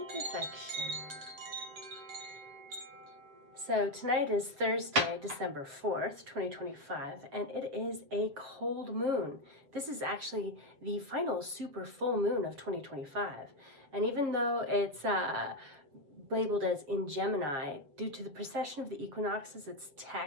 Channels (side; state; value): left; late; 7.4 ms